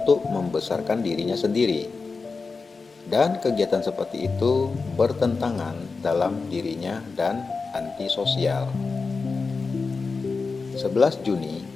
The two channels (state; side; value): quieter; right; 4.4 dB